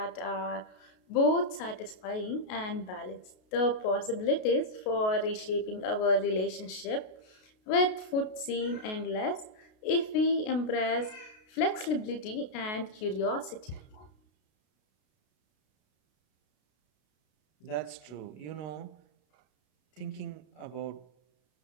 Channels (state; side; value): late; right; 33 ms